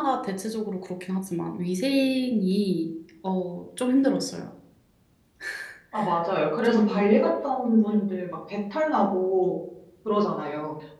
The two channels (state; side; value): identical; both; correlation 1.00